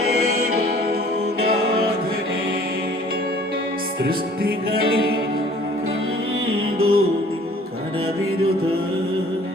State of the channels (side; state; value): both; normal; correlation 0.53